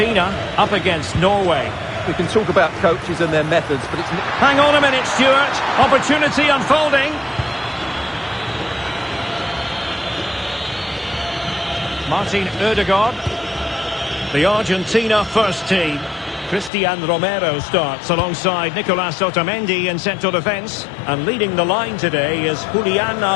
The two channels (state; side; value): drops out; right; at 16.7 s